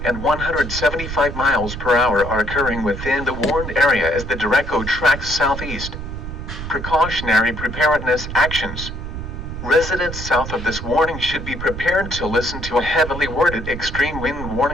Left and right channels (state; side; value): noise; right; rumble, 7 dB below the sound